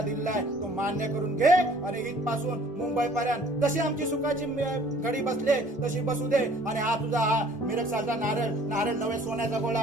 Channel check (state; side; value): normal; both; correlation 0.54